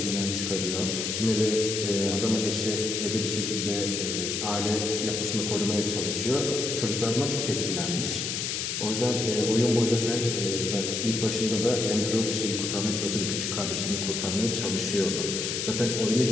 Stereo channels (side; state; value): left; noise; hiss, 2 dB below the sound